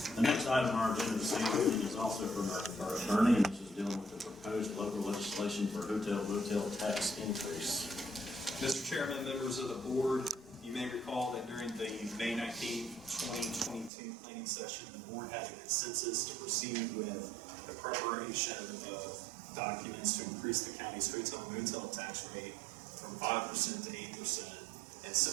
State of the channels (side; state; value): left; drops out; at 13.9 s